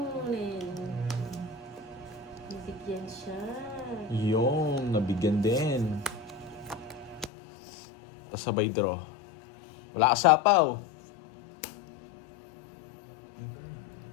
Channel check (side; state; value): right; drops out; at 7.3 s